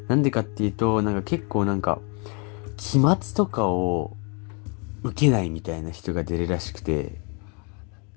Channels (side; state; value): right; quieter; 34.8 dB